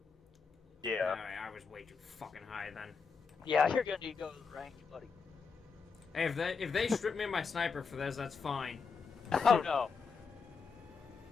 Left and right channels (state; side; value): quieter; right; 5.3 dB